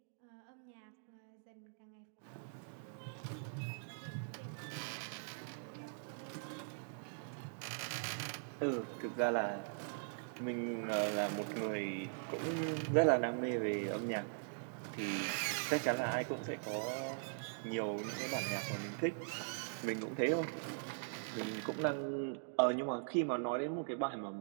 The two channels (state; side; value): silent; left; digital silence